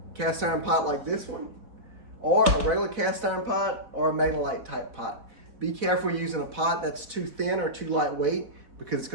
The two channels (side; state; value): left; late; 4.1 ms